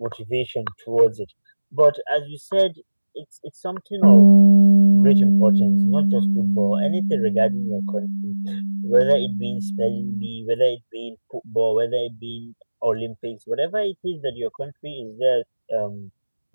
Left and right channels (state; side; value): inverted; both; correlation -1.00